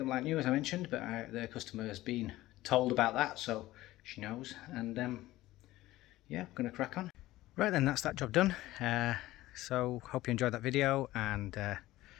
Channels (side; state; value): right; quieter; 16.7 dB